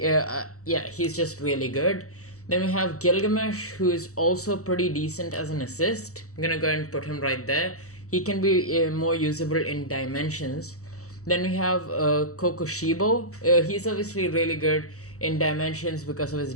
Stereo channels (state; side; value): late; right; 0.65 ms